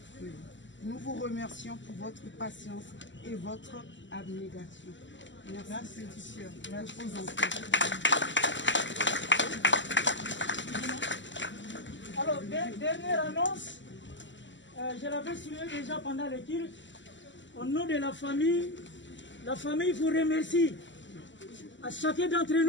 Nous vous remercions pour votre patience et votre abnégation. Merci, petite sœur. Merci aux enfants. Alors, dernière annonce, je l'avais souligné déjà pendant le culte. Au nom de la famille vous remercie à chacun d'entre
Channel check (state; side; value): late; right; 0.54 ms